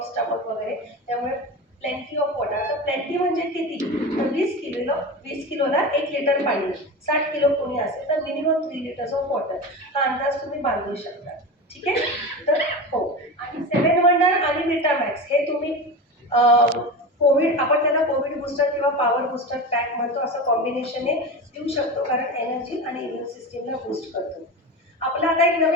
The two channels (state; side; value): normal; both; correlation 0.25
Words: स्टमक वगैरे. त्यामुळे प्लेंटी ऑफ वॉटर. तर प्लेंटी म्हणजे किती, तर 20 किलोला 1 लिटर पाणी. 60 किलो कोणी असेल तर मिनिमम 3 लिटर्स ऑफ वॉटर. हा अंदाज तुम्ही बांधू शकता. ठीक आहे. तर हो, आणि 7 वंडर आणि विटामॅक्स हे तुम्ही कोविड, आपण त्याला कोविड बूस्टर किंवा पॉवर बूस्टर पॅक म्हणतो, असं कॉम्बिनेशन देऊ शकतो, कारण एनर्जी आणि इम्युन सिस्टीमला बूस्ट करतो. आपला आता एक